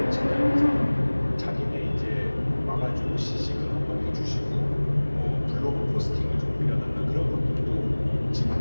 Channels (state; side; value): inverted; both; correlation -1.00